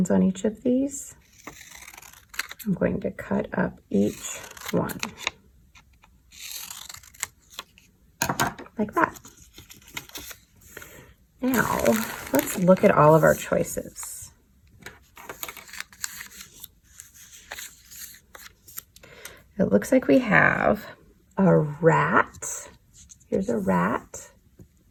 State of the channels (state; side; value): identical; both; correlation 1.00